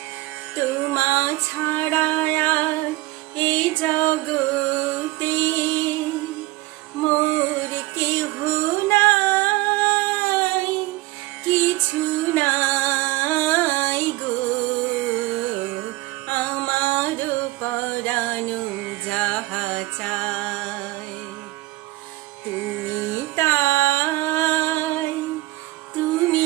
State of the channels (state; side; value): quieter; left; 19.7 dB